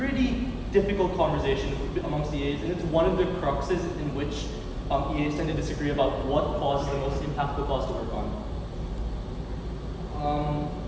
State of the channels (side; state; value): both; identical; correlation 1.00